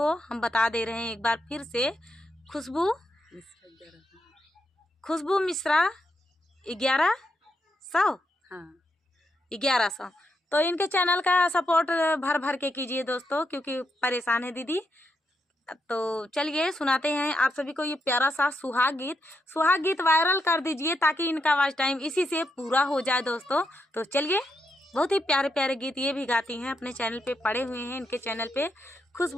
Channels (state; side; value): normal; both; correlation 0.82